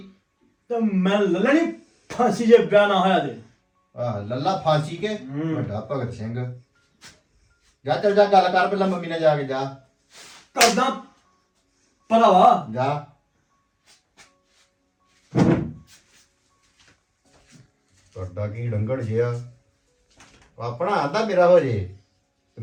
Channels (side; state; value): both; identical; correlation 1.00